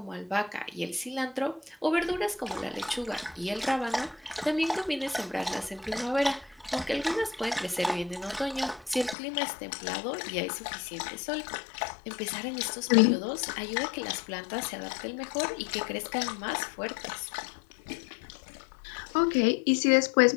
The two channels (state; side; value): drops out; right; at 9.2 s